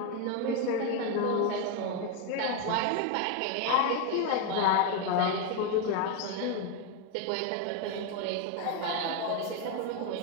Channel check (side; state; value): both; different; correlation 0.02